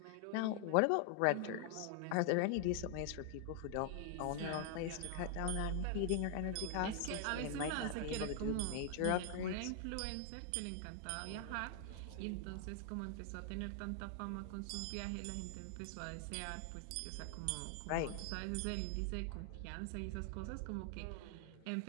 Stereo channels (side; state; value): both; different; correlation 0.00